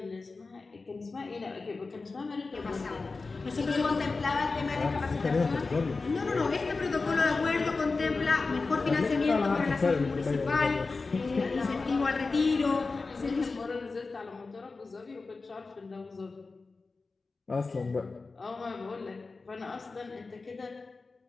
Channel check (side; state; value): right; quieter; 4.0 dB